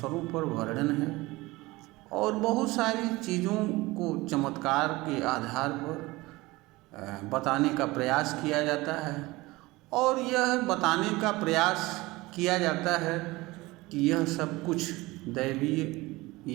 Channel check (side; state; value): left; quieter; 20.9 dB